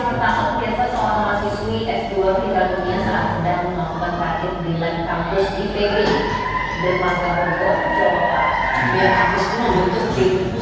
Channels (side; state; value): both; identical; correlation 1.00